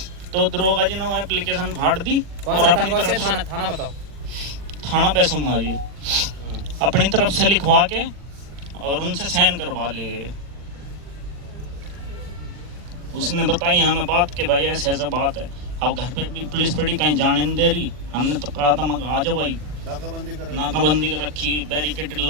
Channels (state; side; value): late; left; 40 ms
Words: तो दरोगा जी ने एप्लीकेशन फाड़ दी और अपनी तरफ से थाना बताओ। थाना पैसुमा जी अपनी तरफ से लिखवा के और उनसे साइन करवा लिए। उसने बताई हमें बात के भाई ऐसे ऐसा बात है। अब घर पे भी पुलिस पड़ी, कहीं जाने नहीं दे रही। हमने तो कहा था मगर आ जाओ भाई, नाकाबंदी कर रखी, बैरिकेड